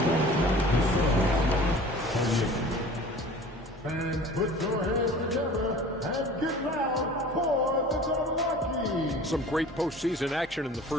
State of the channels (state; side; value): normal; both; correlation 0.43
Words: fans put your hands together and get loud for the Milwaukee. Some great postseason action in the